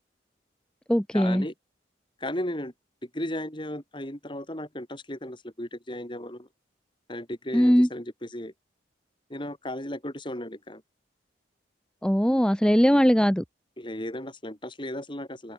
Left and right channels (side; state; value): both; normal; correlation 0.95